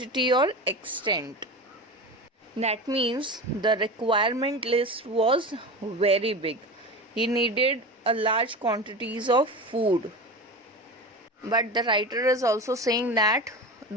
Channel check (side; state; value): both; normal; correlation 0.28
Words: or extent. That means the requirement list was very big. He needed a large quantities of food. But the writer is also saying that